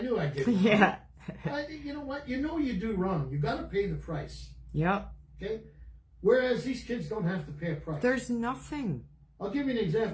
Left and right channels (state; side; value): identical; both; correlation 1.00